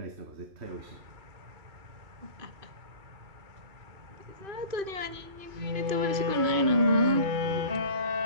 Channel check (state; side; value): late; left; 2.5 ms